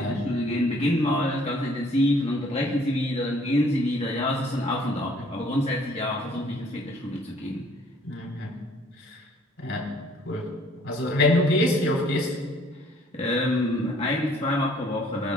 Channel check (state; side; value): normal; both; correlation 0.59